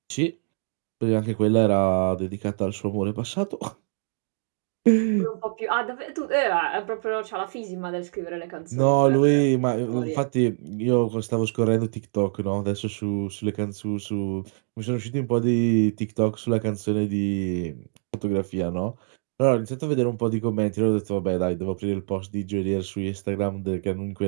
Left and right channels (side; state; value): left; silent; digital silence